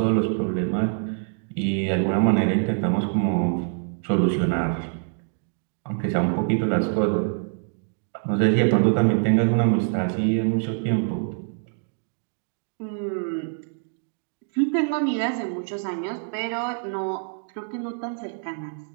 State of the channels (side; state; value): left; silent; 60 dB below the other